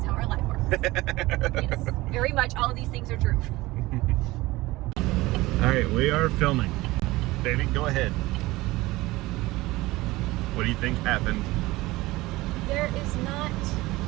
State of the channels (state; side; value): quieter; left; 19.7 dB